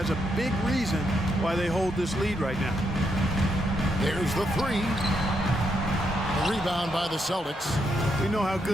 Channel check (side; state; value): both; normal; correlation 0.79